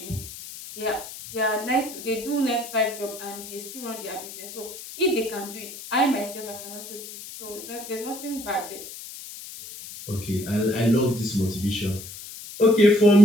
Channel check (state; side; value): noise; left; hiss, 12 dB below the sound